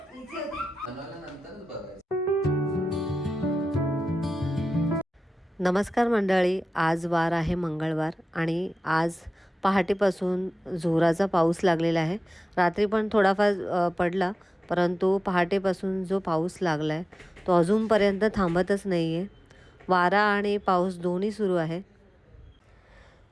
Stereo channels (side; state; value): both; normal; correlation 0.95